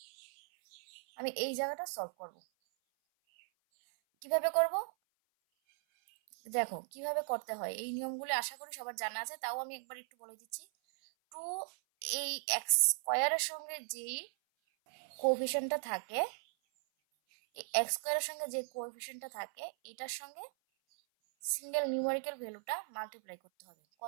আমি এই জায়গাটা সলভ করব। কিভাবে করব দেখো, কিভাবে করতে হয় এই নিয়মগুলো আশা করি সবার জানা আছে, তাও আমি একবার একটু বলে দিচ্ছি। 2 এই x² সঙ্গে যেই কোএফিসিয়েন্টটা থাকে, এই x² সঙ্গে যে কোএফিসিয়েন্টটা থাকে এটার সঙ্গে সিঙ্গেল নিউমেরিক্যাল ভ্যালুটা মাল্টিপ্লাই করতে হবে।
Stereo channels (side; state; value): left; silent; 53 dB below the other